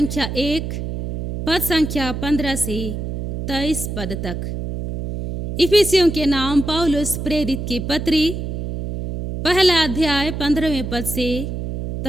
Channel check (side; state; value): right; noise; hum, 5 dB below the sound